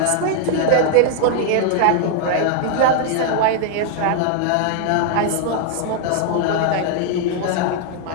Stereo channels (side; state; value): both; different; correlation 0.00